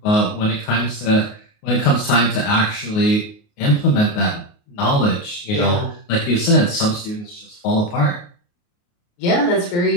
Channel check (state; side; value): late; right; 28 ms